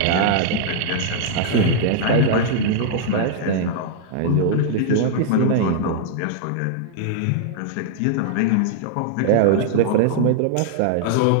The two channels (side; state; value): both; different; correlation -0.01